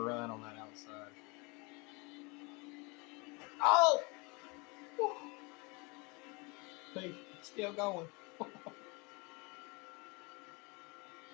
on that outside. Oh! Hey, still going.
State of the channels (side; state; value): right; quieter; 28.7 dB